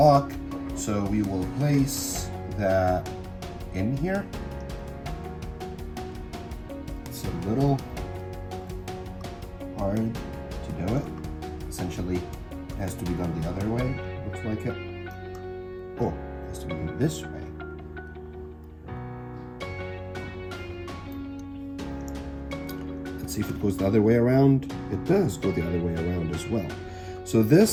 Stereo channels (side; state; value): both; identical; correlation 1.00